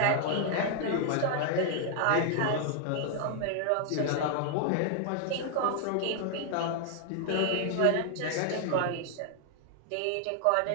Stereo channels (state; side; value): different; both; correlation 0.00